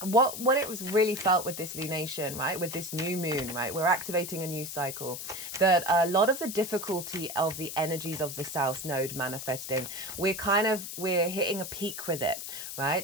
What it was really felt with this lunation, right, with this new moon, right, we're activating a new cycle, that a lot of the difficulty of the energies of the south node manifesting, we're hitting a peak with it,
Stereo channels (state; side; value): noise; left; hiss, 8 dB below the sound